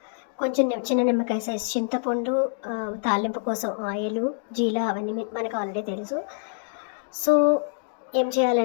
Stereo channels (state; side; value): silent; right; 61 dB below the other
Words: కొంచెం చిన్న నిమ్మకాయ సైజ్ చింతపండు, తాలింపు కోసం ఆయిలు, జీల అవన్నీ మనకు ఆల్రెడీ తెలుసు. సో ఏం